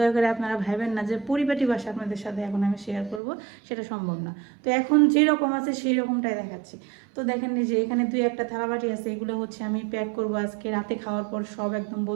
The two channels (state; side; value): drops out; left; at 3.2 s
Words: করে আপনারা ভাবেন না যে পরিপাটি বাসা আপনাদের সাথে এখন আমি শেয়ার করব, সেটা সম্ভব না। তো এখন যেরকম আছে সেই রকমটাই দেখাচ্ছি। তো দেখেন যে এখানে 2-1টা থালাবাটি আছে, এগুলো হচ্ছে আমি প্যাক করব আজকে রাতে খাওয়ার পর, সব একদম